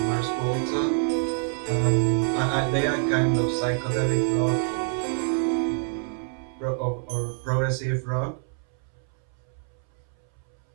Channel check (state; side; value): silent; left; 61 dB below the other